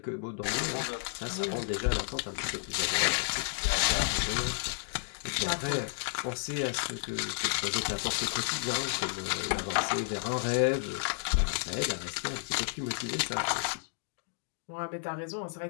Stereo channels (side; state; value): right; silent; digital silence